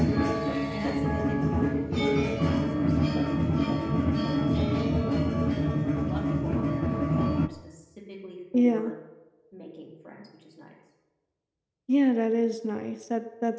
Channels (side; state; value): both; identical; correlation 1.00